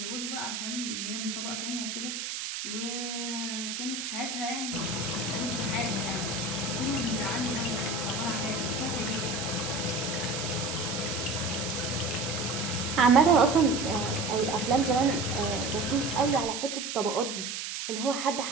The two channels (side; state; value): right; noise; hiss, 4 dB below the sound